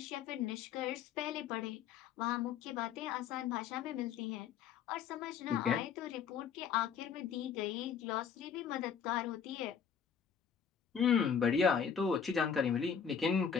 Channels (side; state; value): right; quieter; 7.3 dB